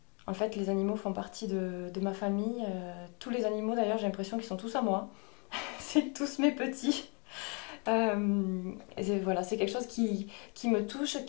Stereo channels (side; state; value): right; quieter; 34.5 dB